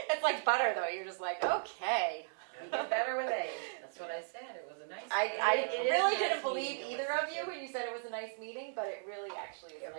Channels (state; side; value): silent; left; digital silence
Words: like butter, though. You're just like, okay. You get better with age. That's what I said, it was a nice. I It is really a nice didn't believe meeting to either listen of you to. when you said it was a nice meeting, but it really actually is. It a